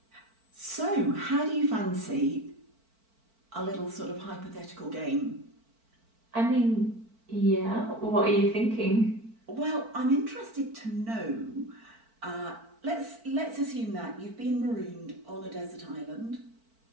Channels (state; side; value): late; left; 4.5 ms